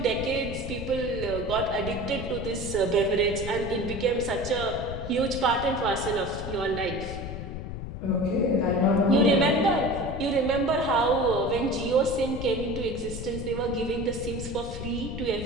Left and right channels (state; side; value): noise; left; rumble, 8 dB below the sound